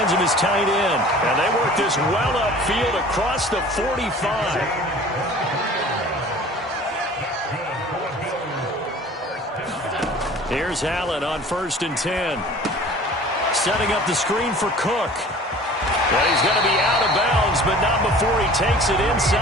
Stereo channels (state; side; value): normal; both; correlation 0.45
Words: of his tight end. And they work this well upfield across the 45. Here's Allen on 1st and 10. Setting up the screen for Cook. Well, he's going to be out of bounds, but not before he takes it